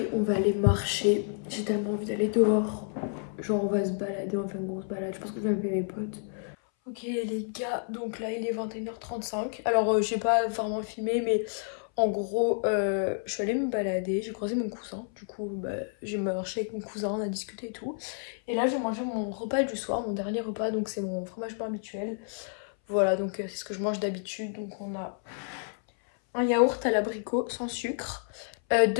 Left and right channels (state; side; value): silent; right; 58 dB below the other